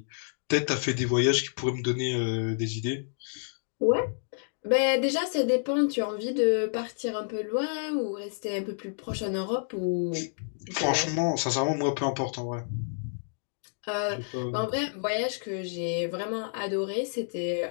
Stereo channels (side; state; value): right; silent; digital silence